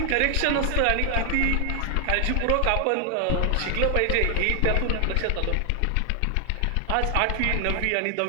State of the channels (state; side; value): different; both; correlation 0.00